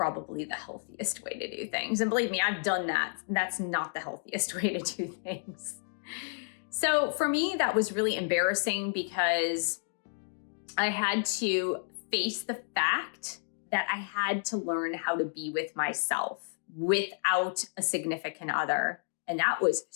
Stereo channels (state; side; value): silent; right; digital silence